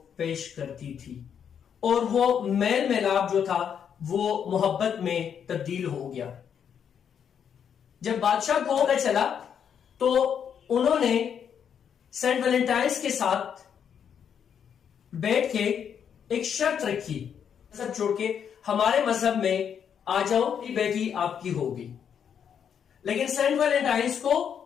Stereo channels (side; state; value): right; quieter; 8.0 dB